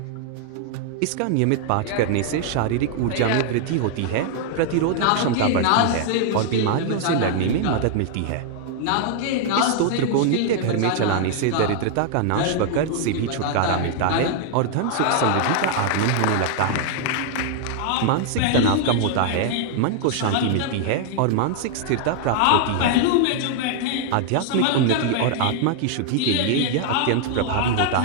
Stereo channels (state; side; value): different; both; correlation 0.00